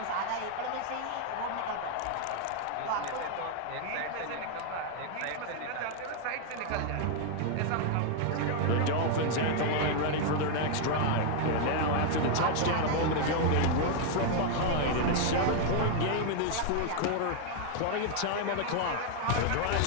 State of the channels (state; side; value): different; both; correlation 0.00